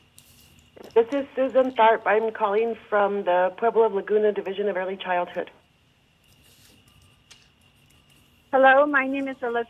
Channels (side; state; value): both; identical; correlation 1.00